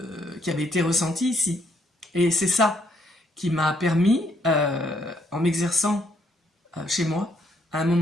avait été ressentie ici. Et c'est ça qui m'a permis, en m'exerçant chez moi, à un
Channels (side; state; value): both; normal; correlation 0.71